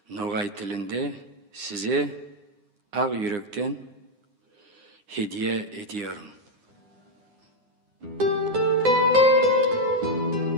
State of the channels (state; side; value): late; left; 9.8 ms